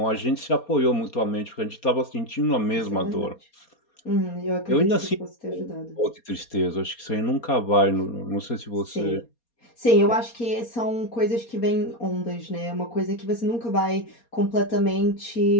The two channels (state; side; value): late; right; 4.2 ms